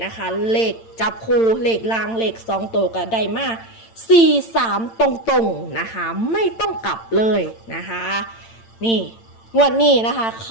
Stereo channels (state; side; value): late; right; 8.9 ms